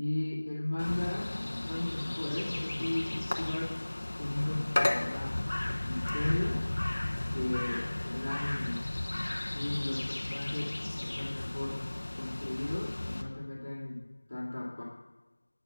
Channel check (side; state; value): both; inverted; correlation -1.00